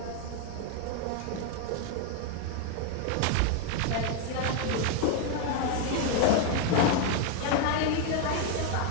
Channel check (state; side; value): different; both; correlation 0.01